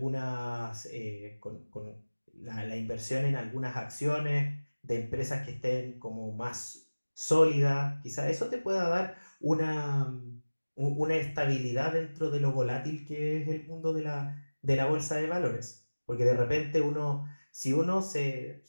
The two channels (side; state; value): both; inverted; correlation -1.00